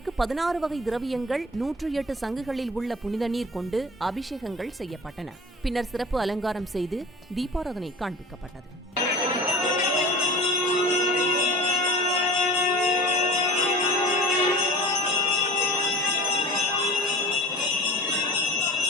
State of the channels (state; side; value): normal; both; correlation 0.38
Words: 16 வகை திரவியங்கள் 108 சங்குகளில் உள்ள புனித நீர் கொண்டு அபிஷேகங்கள் செய்யப்பட்டன. பின்னர் சிறப்பு அலங்காரம் செய்து தீபாராதனை காண்பிக்கப்பட்டது.